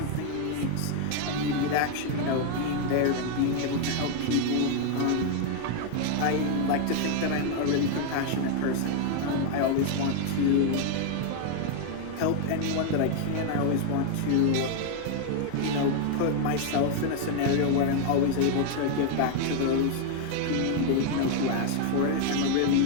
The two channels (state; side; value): different; both; correlation 0.00